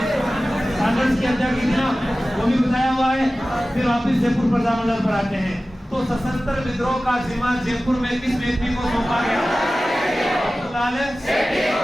कांग्रेस की हत्या की थी ना? वो भी बताया हुआ है। फिर वापिस जयपुर प्रजामंडल पर आते हैं। तो सशस्त्र विद्रोह का जिम्मा जयपुर में किस व्यक्ति को सौंपा गया?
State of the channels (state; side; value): normal; both; correlation 0.96